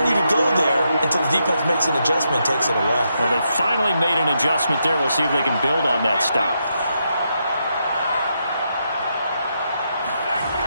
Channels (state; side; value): inverted; both; correlation -0.81